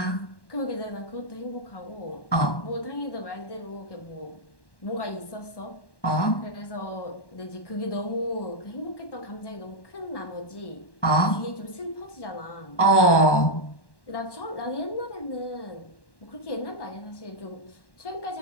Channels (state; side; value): late; right; 1.1 ms